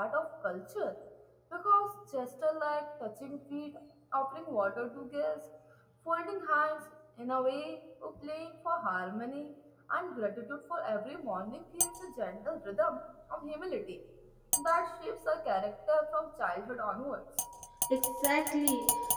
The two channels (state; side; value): identical; both; correlation 1.00